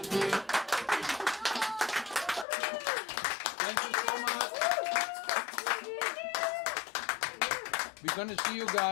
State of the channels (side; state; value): right; drops out; at 2.5 s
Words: Thank you so much. We're gonna see you